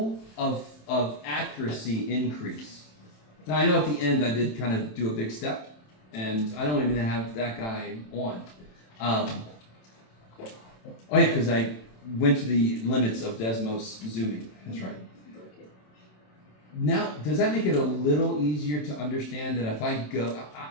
of accuracy increase? Now, I know at the end I did kind of do a big step, and I don't even have that guy on. Oh, yeah, because I went to the limits of Desmos zooming. That's right. Now, does that make it a little easier to understand that if I go,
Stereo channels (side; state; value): right; late; 27 ms